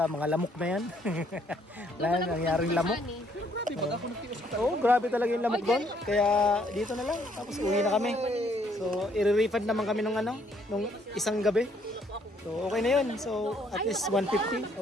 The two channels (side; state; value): both; normal; correlation 0.67